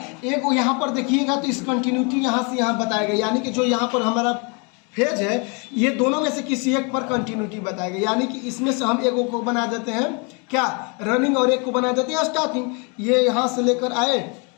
एक यहाँ पर देखिएगा तो इस कंटिन्यूटी यहाँ से यहाँ बताएगा, यानी कि जो यहाँ पर हमारा फेज है ये दोनों में से किसी एक पर कंटिन्यूटी बताएगा। यानी कि इसमें से हम एक को बना देते हैं क्या, रनिंग, और एक को बना देते हैं स्टार्टिंग। ये यहाँ से लेकर आए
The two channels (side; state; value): right; quieter; 33.1 dB